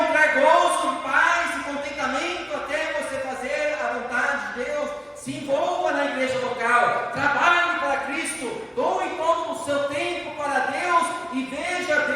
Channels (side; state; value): both; identical; correlation 1.00